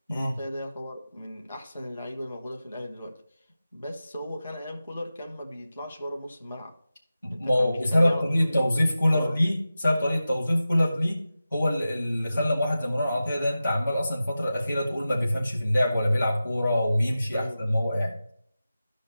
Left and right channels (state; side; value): inverted; both; correlation -0.94